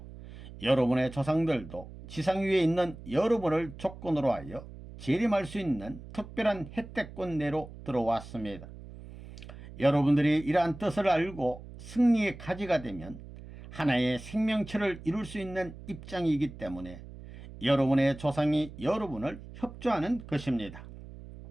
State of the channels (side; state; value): right; noise; hum, 15 dB below the sound